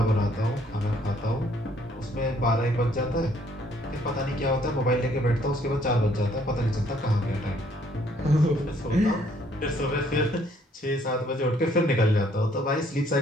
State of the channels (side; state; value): both; normal; correlation 0.64